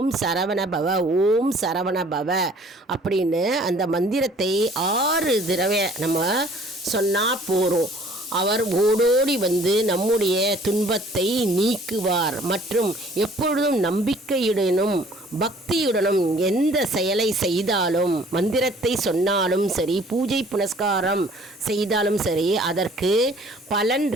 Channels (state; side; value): normal; both; correlation 0.54